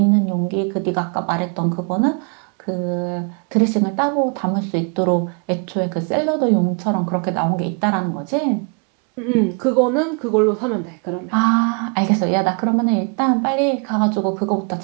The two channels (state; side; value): quieter; left; 38.2 dB